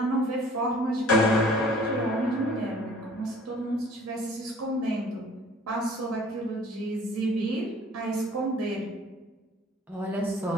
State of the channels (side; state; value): both; normal; correlation 0.51